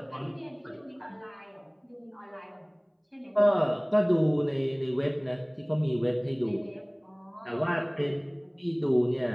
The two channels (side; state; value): both; identical; correlation 1.00